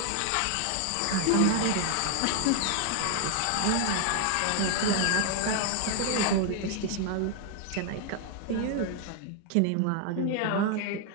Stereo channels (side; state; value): both; different; correlation 0.00